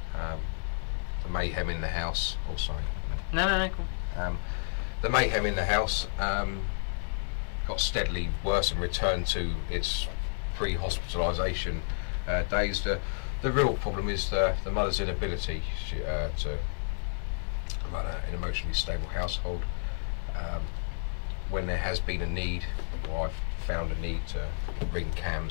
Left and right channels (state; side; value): silent; right; digital silence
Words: The mayhem in the house. Oh, sorry. No, cool. The mayhem in the house got steadily worse and returned to its pre-hospitalisation days. The real problem is the mother's inability to run an emotionally stable household. When there has been a need, or I've found a need to ring